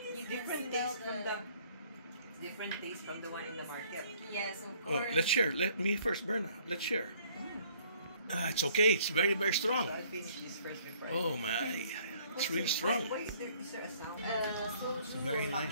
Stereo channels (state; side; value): inverted; both; correlation -0.60